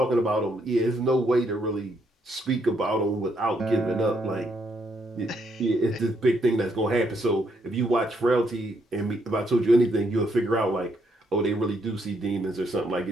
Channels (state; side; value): normal; both; correlation 0.74